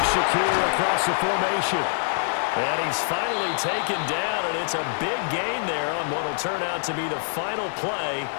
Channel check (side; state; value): right; silent; 62 dB below the other